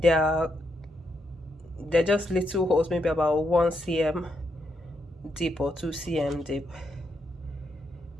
They're just little holes, maybe about 1 cm deep or 2 cm deep.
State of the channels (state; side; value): normal; both; correlation 0.80